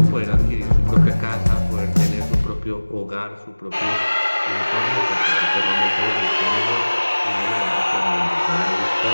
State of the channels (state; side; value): inverted; both; correlation -1.00